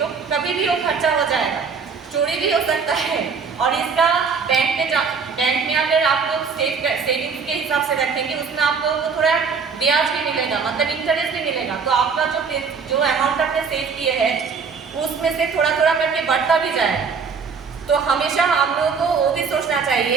कभी भी वो खर्चा हो जाएगा, चोरी भी हो सकता है। और इसका बैंक में अगर आप लोग सेविंग्स के हिसाब से रखेंगे उसमें आप लोगों को थोड़ा ब्याज भी मिलेगा, मतलब इंटरेस्ट भी मिलेगा। तो आपका जो अमाउंट आपने सेव किए हैं उसमें से थोड़ा थोड़ा करके बढ़ता भी जाएगा। तो हमेशा हम लोगों को वो भी सोचना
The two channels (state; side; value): quieter; left; 5.6 dB